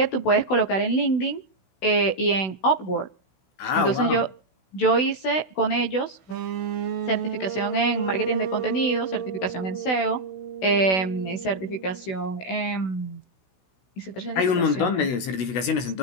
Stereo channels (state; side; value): late; right; 16 ms